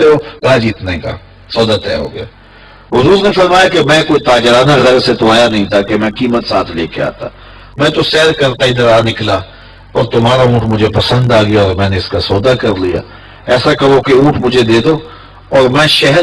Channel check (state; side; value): identical; both; correlation 1.00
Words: ہو؟ کہا جی اتنے کا. سودا طے ہو گیا. حضور نے فرمایا کہ میں کوئی تاجرانہ غرض سے تو آیا نہیں تھا کہ میں قیمت ساتھ لے کے آتا. میں تو سیر کرتا ادھر آ نکلا اور تمہارا اونٹ مجھے پسند آ گیا اور میں نے اس کا سودا کر لیا. ایسا کرو کہ اونٹ مجھے دے دو اور میں